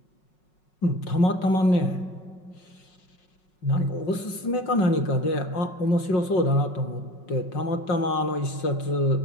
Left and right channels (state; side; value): late; right; 5.5 ms